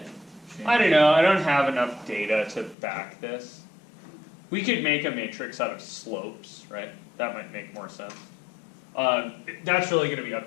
I don't know, I don't have enough data to back this. We could make a matrix out of slopes, right? That might make more sense. That's really going to be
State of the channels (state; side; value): drops out; right; at 2.8 s